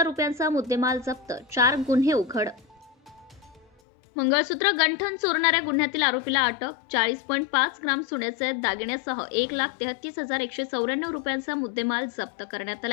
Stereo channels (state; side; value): drops out; right; at 3.7 s